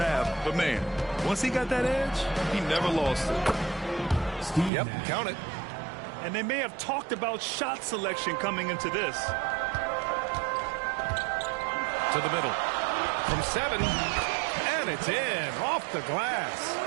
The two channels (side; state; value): left; drops out; at 4.7 s